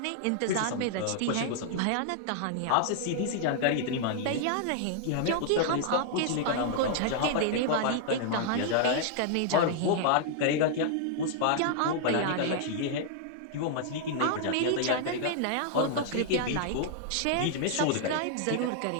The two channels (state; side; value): different; both; correlation -0.01